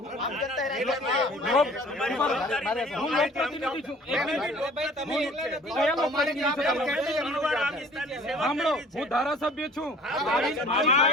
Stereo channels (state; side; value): normal; both; correlation 0.50